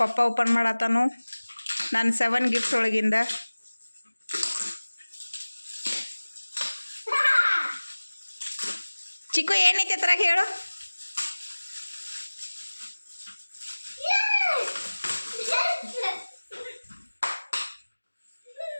ಪಪ್ಪ ಓಪನ್ ಮಾಡತ್ತಾನು ನಾನು 7 ಗಿಫ್ಟ್ ಒಳಗಿಂದ ಚಿಕ್ಕು ಏನೈತೆ ಹತ್ರ ಹೇಳು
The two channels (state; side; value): inverted; both; correlation -1.00